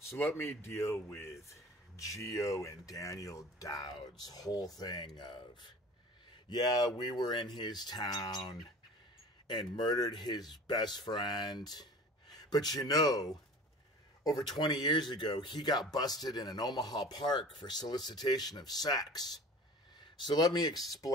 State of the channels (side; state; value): both; normal; correlation 0.41